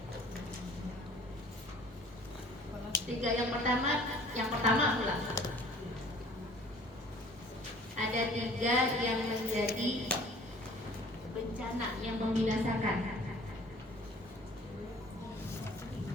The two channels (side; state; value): both; normal; correlation 0.51